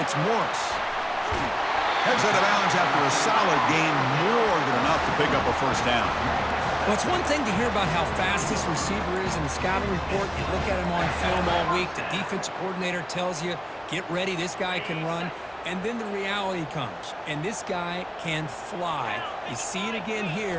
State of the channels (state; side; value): identical; both; correlation 1.00